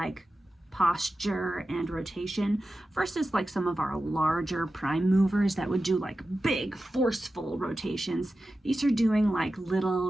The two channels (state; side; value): normal; both; correlation 0.93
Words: posture and rotation versus like some of our larger prime movers that would do like big forceful rotations. These are doing like